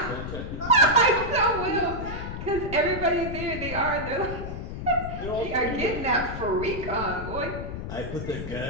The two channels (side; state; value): left; noise; rumble, 7 dB below the sound